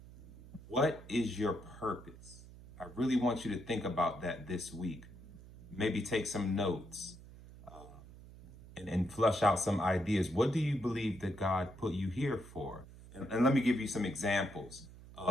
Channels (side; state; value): right; noise; hum, 18 dB below the sound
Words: What is your purpose? I really want you to think about that this week. Maybe take some notes and flush out some ideas. What do you believe that God put you here for? And let me give you some examples